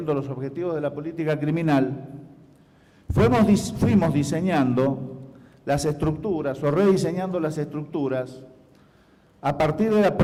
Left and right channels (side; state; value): both; identical; correlation 1.00